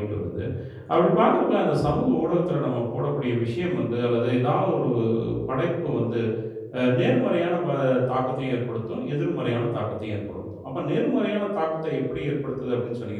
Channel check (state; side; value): identical; both; correlation 1.00